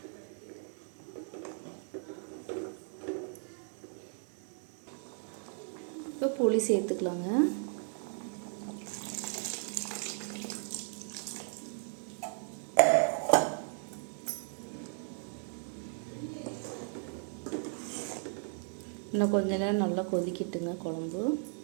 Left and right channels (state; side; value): silent; left; 54 dB below the other